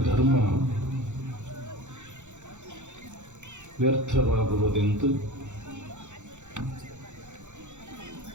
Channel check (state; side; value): late; left; 0.84 ms